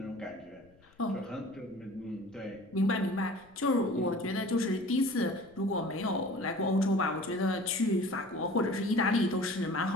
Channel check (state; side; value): noise; left; rumble, 30 dB below the sound